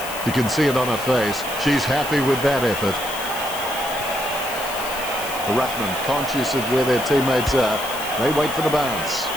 You can see it on her face. She's happy with that effort. The ruckman, conscious of where their teammates are, they wait for the bounce.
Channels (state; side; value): noise; left; hiss, 11 dB below the sound